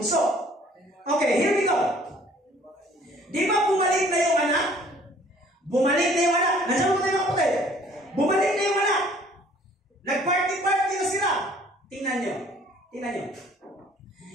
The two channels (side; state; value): both; normal; correlation 0.56